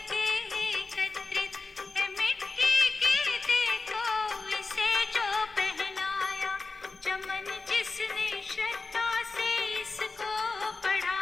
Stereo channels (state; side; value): quieter; right; 3.8 dB